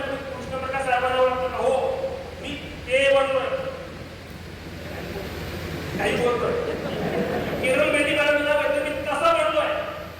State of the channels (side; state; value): both; identical; correlation 1.00